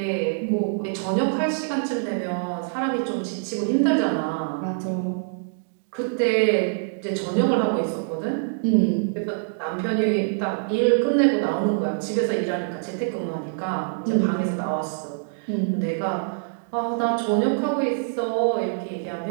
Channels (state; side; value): silent; left; digital silence